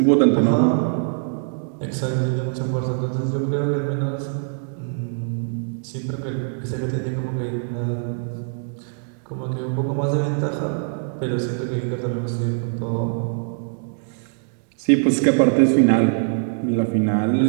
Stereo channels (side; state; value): left; silent; digital silence